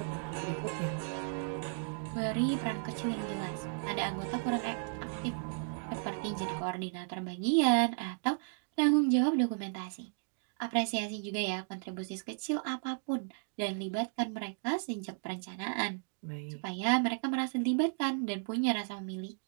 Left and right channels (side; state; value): left; silent; 55 dB below the other